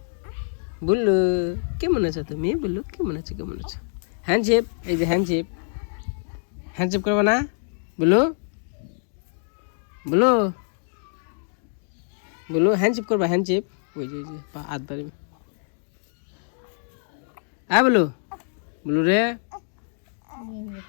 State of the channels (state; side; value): silent; right; digital silence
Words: বললো কেমন আছো তুমি বললো কেমন আছো হ্যান্ডশেপ এই যে হ্যান্ডশেপ করবে না বলো হ্যান্ডশেপ করবা ওই যে হাত বাড়ি বলো রে